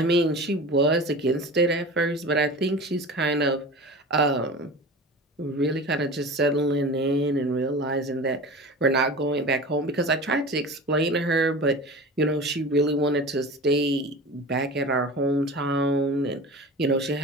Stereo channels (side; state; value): both; normal; correlation 0.34